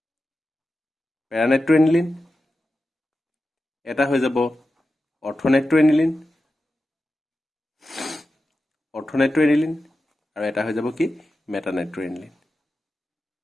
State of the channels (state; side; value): normal; both; correlation 0.92